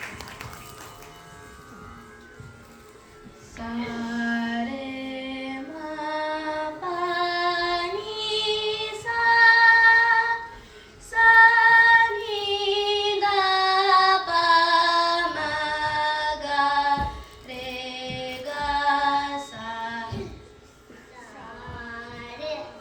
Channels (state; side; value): identical; both; correlation 1.00